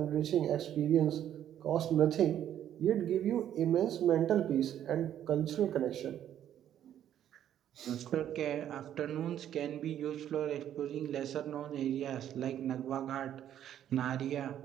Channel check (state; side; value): quieter; left; 10.7 dB